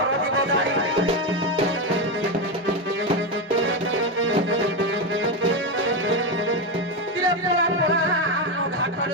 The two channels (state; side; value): normal; both; correlation 0.11